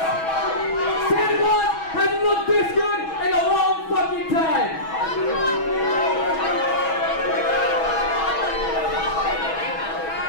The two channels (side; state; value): right; late; 6.2 ms